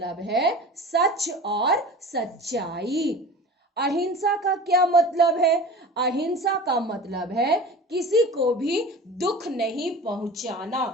है सच और सच्चाई। अहिंसा का क्या मतलब है? अहिंसा का मतलब है किसी को भी दुख नहीं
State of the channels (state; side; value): normal; both; correlation 0.37